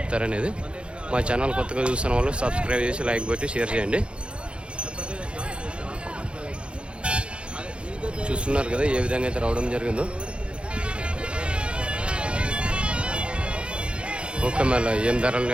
మా ఛానల్ కొత్తగా చూస్తున్న వాళ్ళు సబ్స్క్రైబ్ చేసి లైక్ పెట్టి షేర్ చేయండి. చూస్తున్నారు కదా ఏ విధంగా అయితే రావడం జరిగిందో. ఓకే, మళ్ళీ ఏం ధరలు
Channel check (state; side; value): late; left; 0.057 ms